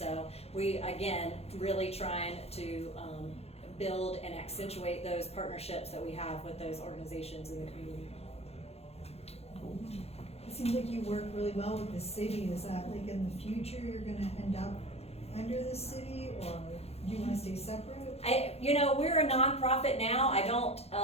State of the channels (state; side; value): late; right; 0.30 ms